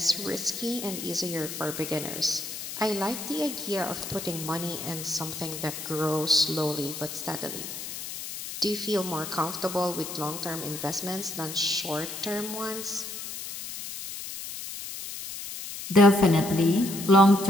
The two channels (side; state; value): left; noise; hiss, 8 dB below the sound